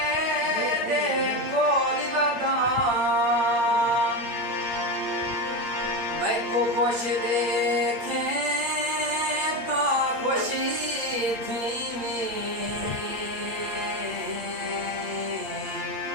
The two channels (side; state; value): left; late; 8.7 ms